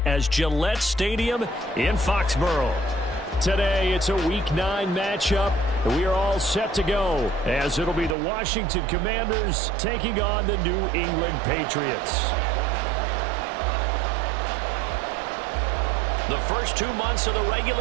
as Gillette Stadium in Foxborough. Today, it's a Week 9 matchup. We are all set to go, as it'll be the Washington Commanders taking on the New England Patriots. The first 2 months of the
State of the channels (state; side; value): drops out; left; at 8.2 s